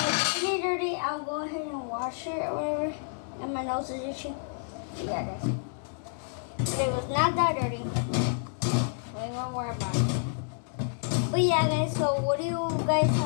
dirty, I'll go ahead and wash it or whatever, and my nose is itchy. Yeah, guys. It was not that dirty. We won't worry about it. But yeah, guys, so what do you guys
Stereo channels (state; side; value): silent; right; digital silence